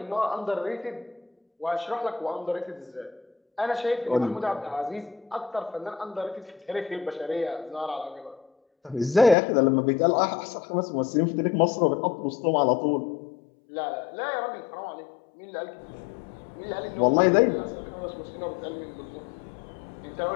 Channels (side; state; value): right; drops out; at 9.3 s